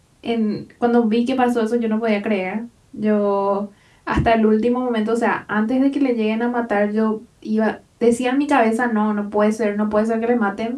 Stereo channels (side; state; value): both; identical; correlation 1.00